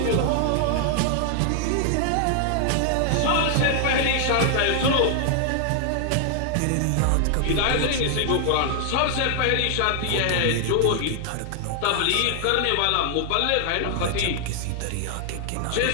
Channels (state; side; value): different; both; correlation 0.00